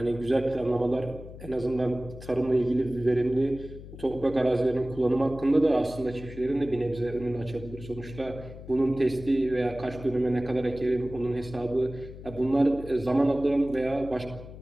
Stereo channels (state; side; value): noise; left; hum, 14 dB below the sound